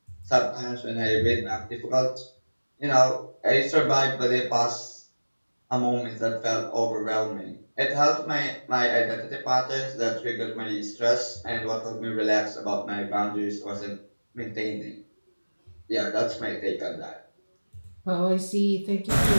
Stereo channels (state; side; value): inverted; both; correlation -1.00